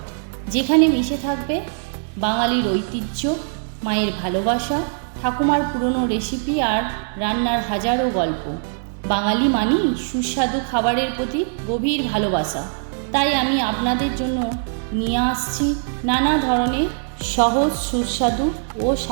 যেখানে মিশে থাকবে বাঙালির ঐতিহ্য, মায়ের ভালোবাসা, ঠাকুমার পুরনো রেসিপি আর রান্নার হাজারো গল্প। বাঙালি মানেই সুস্বাদু খাবারের প্রতি গভীর ভালোবাসা। তাই আমি আপনাদের জন্য নিয়ে আসছি নানা ধরনের সহজ, সুস্বাদু ও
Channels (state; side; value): silent; left; digital silence